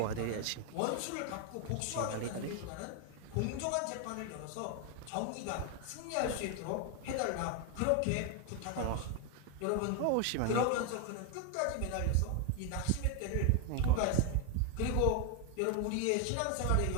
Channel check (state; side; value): different; both; correlation 0.01